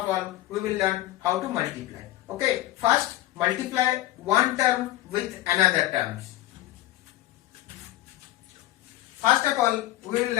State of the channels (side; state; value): right; quieter; 15.9 dB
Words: all, we will learn how to multiply. Okay, first multiply one term with another terms. First of all, we will